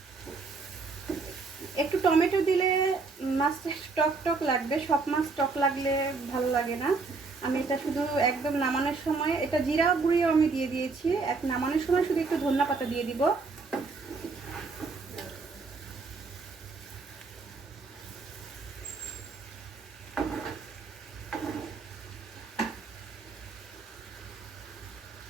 একটু টমেটো দিলে মাছটা টক টক লাগবে, সব মাছ টক লাগলে ভালো লাগে না। আমি এটা শুধু একদম নামানোর সময়, এটা জিরা গুঁড়িও আমি দিয়ে দিয়েছি, এক নামানোর সময় শুধু একটু ধনিয়া পাতা দিয়ে দিব।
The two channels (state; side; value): quieter; left; 4.2 dB